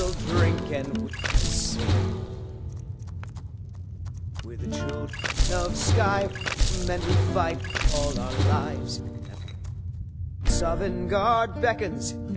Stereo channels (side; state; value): both; identical; correlation 1.00